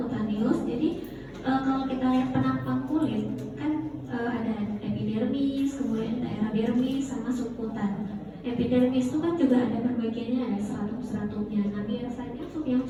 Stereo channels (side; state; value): both; identical; correlation 1.00